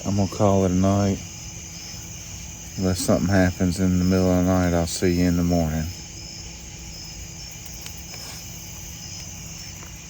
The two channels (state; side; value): identical; both; correlation 1.00